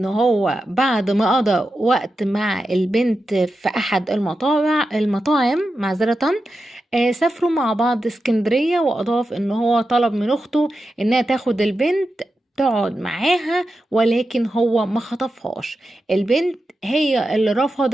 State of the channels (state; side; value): normal; both; correlation 0.90